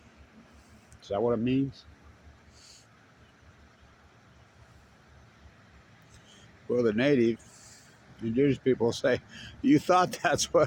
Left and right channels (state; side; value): identical; both; correlation 1.00